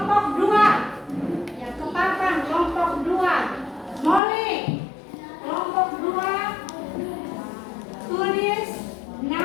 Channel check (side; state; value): right; drops out; at 4.2 s